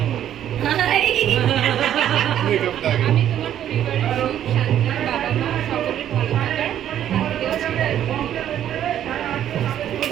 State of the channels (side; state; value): left; quieter; 10.8 dB